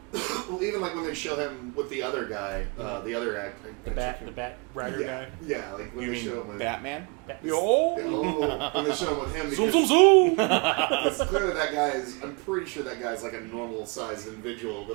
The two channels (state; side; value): quieter; left; 31.6 dB